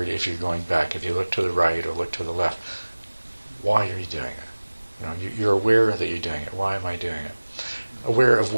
if you're going back, if you look to the right or look to the left, why are you doing it? You're aware that you're doing it. Why am I doing it? Aware of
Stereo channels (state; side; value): inverted; both; correlation -1.00